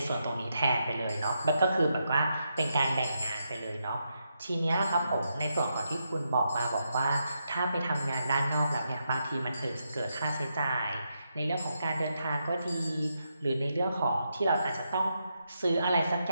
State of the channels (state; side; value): inverted; both; correlation -0.82